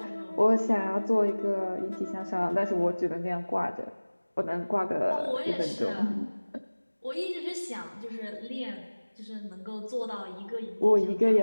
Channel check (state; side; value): inverted; both; correlation -1.00